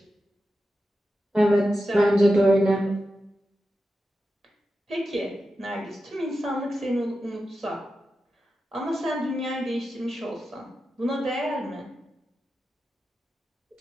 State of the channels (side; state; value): both; normal; correlation 0.91